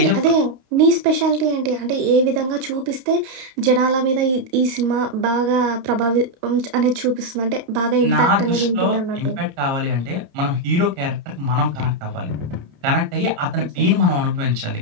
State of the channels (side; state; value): left; late; 31 ms